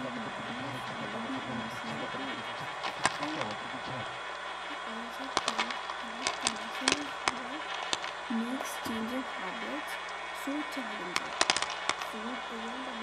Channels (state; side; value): identical; both; correlation 1.00